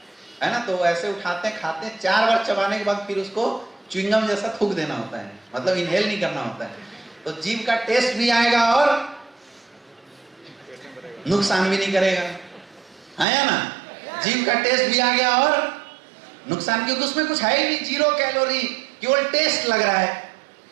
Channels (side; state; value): left; drops out; at 13.2 s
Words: ना। तो ऐसे उठाते हैं, खाते हैं, 4 बार चबाने के बाद फिर उसको च्युइंगम जैसा थूक देना होता है, मतलब इनहेल नहीं करना होता है। तो जीभ का टेस्ट भी आएगा और नुकसान भी नहीं करेगा, है या ना। जीभ का टेस्ट भी आ गया और नुकसान, क्योंकि उसमें कुछ है ही नहीं, 0 कैलोरी, केवल टेस्ट लग रहा है।